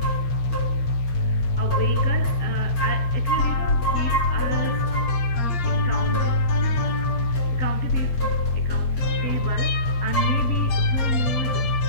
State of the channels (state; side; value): late; right; 8.5 ms